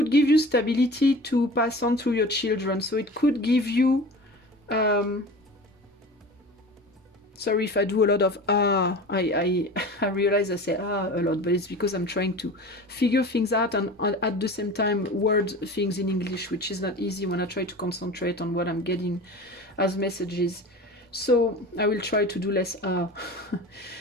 give you stability to pass on through your children. So it could give you sorry if I do a lot of I realize I say a lot, but it's because I'm trying to figure things out and at the same time word things in English, which is not easy when I try to concentrate on what I'm getting as messages. So I will try to do less so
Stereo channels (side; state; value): both; normal; correlation 0.36